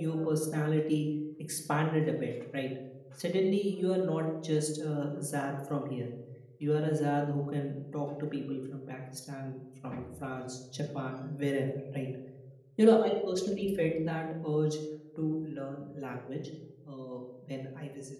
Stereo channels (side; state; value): both; identical; correlation 1.00